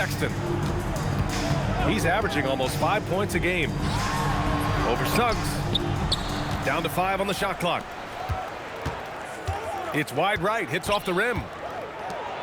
He's averaging almost 5 points a game. Over Suggs. Down to 5 on the shot clock. It's wide right, hits off the rim.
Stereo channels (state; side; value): identical; both; correlation 1.00